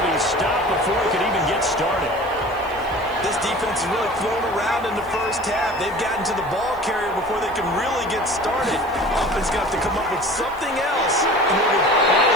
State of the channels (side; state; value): right; noise; hiss, 26 dB below the sound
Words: be stopped before he could even get started. This defense is really thrown around in the first half. They've gotten to the ball carrier before they can really get started. Offense got to come up with something else.